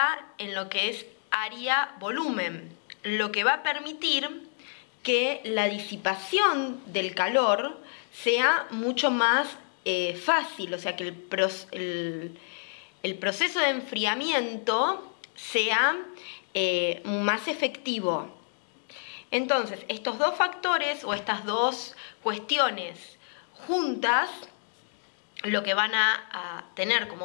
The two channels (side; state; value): right; silent; 59 dB below the other